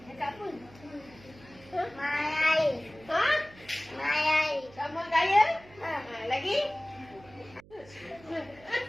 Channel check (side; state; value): right; noise; hum, 23 dB below the sound